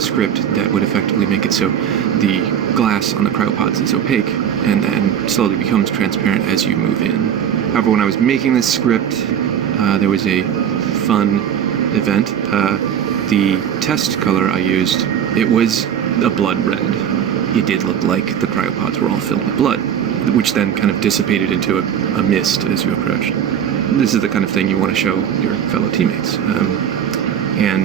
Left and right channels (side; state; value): left; quieter; 8.9 dB